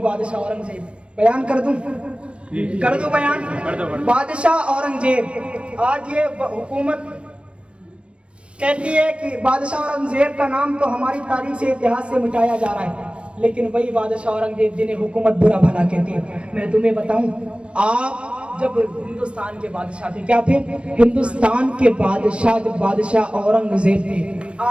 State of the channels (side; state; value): left; late; 0.059 ms